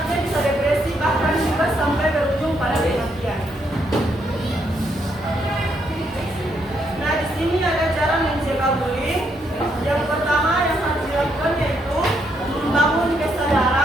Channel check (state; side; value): normal; both; correlation 0.75